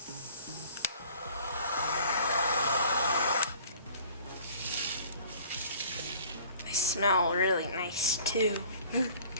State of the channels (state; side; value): inverted; both; correlation -0.49